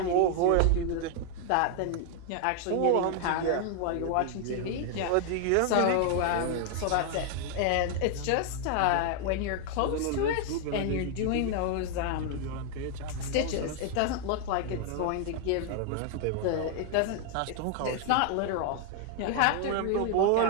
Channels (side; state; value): both; different; correlation 0.00